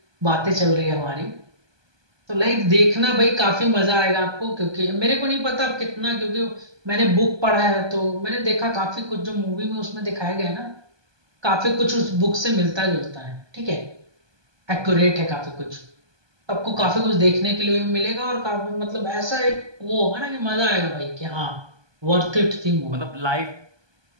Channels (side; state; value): left; late; 1.2 ms